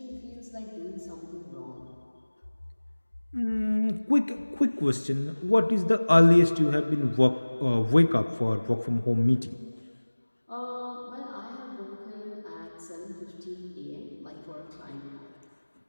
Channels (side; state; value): both; inverted; correlation -1.00